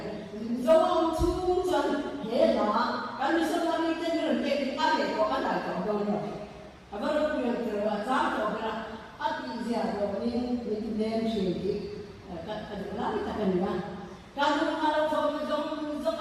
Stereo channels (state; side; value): identical; both; correlation 1.00